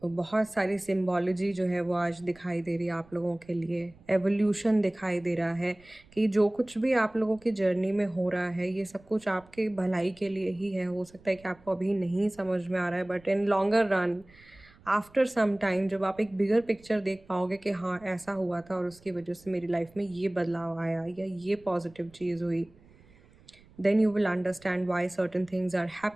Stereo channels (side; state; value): right; noise; rumble, 27 dB below the sound